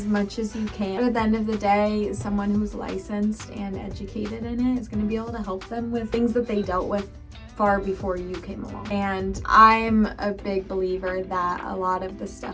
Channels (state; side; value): identical; both; correlation 1.00